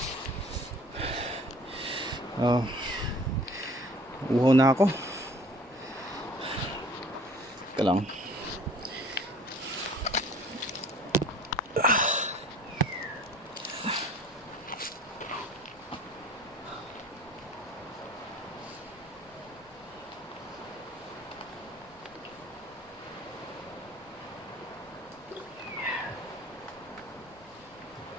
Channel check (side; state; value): both; normal; correlation 0.49